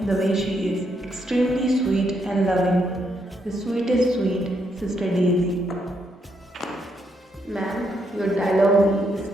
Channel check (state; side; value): normal; both; correlation 0.77